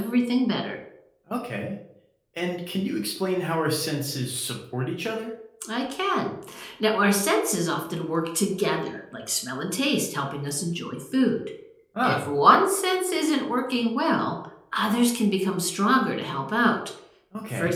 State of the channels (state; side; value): identical; both; correlation 1.00